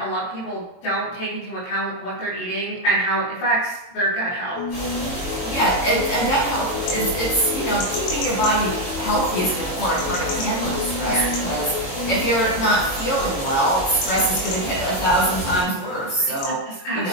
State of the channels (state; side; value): late; right; 22 ms